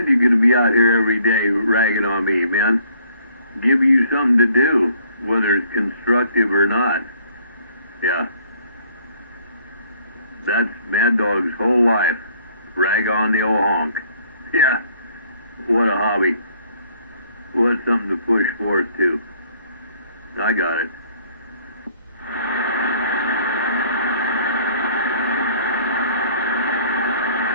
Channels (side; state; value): both; inverted; correlation -0.61